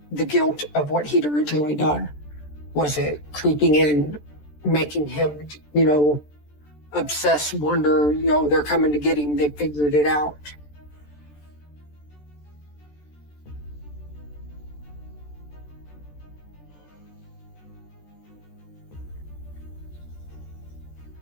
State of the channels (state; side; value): late; right; 14 ms